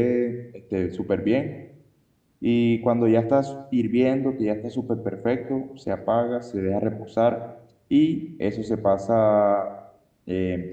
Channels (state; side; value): identical; both; correlation 1.00